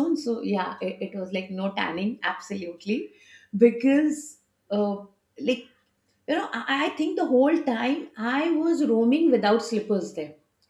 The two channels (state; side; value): identical; both; correlation 1.00